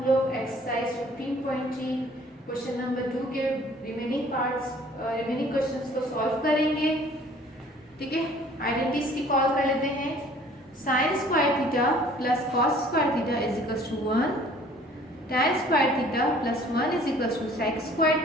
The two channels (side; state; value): both; normal; correlation 0.54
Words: लोग एक्सरसाइज 15.3 क्वेश्चन नंबर 2 के रिमेनिंग क्वेश्चंस को सॉल्व करेंगे। ठीक है, आइडेंटिटीज की कॉल कर लेते हैं। Sine square theta plus cos square theta is equal to 1, tan square theta plus 1 is equal to sec square